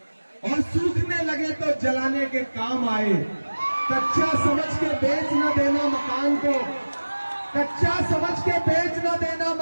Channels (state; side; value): inverted; both; correlation -1.00